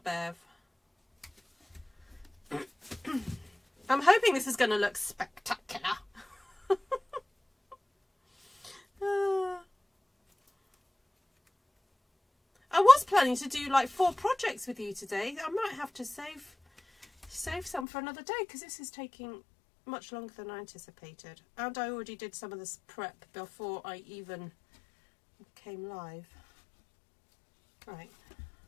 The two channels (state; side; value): drops out; right; at 17.9 s